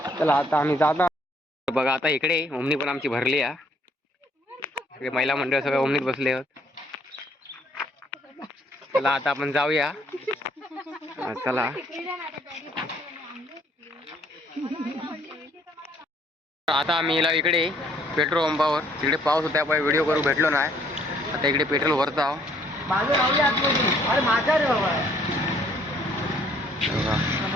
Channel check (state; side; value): normal; both; correlation 0.64